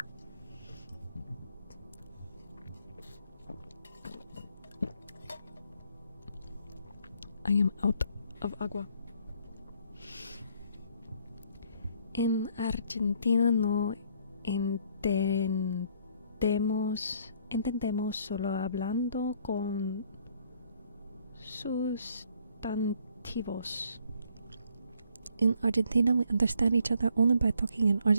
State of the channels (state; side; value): inverted; both; correlation -0.65